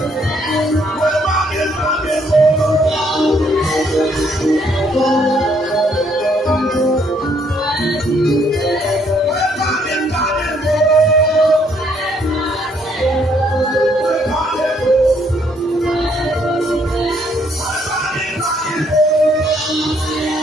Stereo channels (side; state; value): both; normal; correlation 0.68